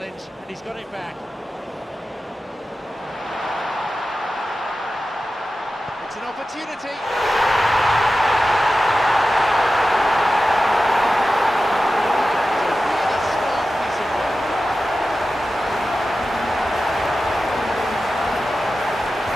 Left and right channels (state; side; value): normal; both; correlation 0.94